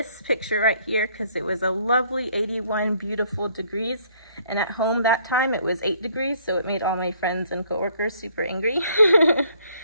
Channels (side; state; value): both; inverted; correlation -0.63